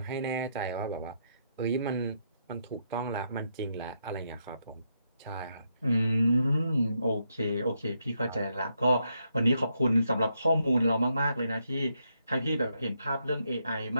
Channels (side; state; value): both; inverted; correlation -0.79